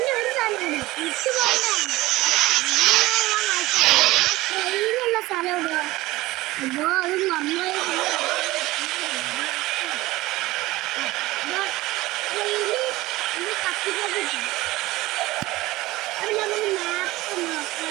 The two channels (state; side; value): quieter; left; 18.7 dB